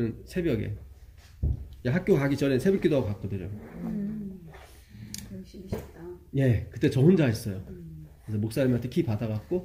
새벽에 학교 가기 전에 새벽기도 하고 갔거든요. 열심히 했다. 예, 그때 저 혼자 했어요. 그래서 목사님한테 키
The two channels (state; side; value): identical; both; correlation 1.00